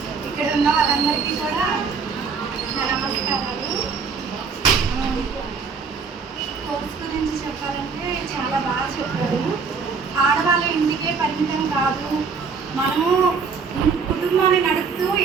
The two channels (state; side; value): quieter; left; 5.3 dB